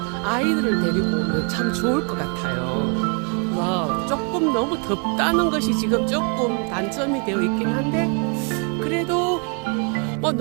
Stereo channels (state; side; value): quieter; left; 36.5 dB